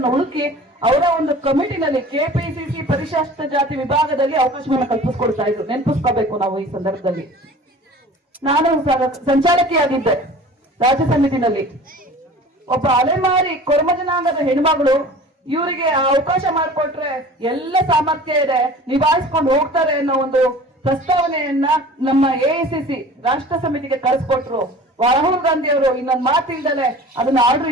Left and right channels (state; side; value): normal; both; correlation 0.42